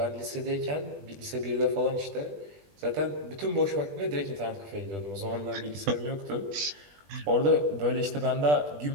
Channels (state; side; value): late; left; 20 ms